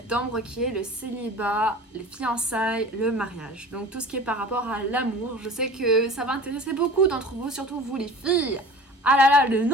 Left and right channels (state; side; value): normal; both; correlation 0.41